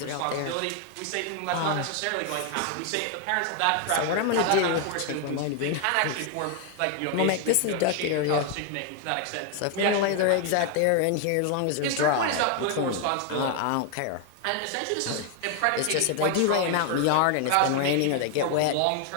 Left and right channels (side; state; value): both; different; correlation 0.00